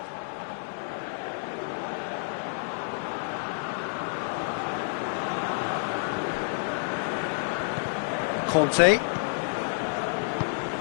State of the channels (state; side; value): silent; right; digital silence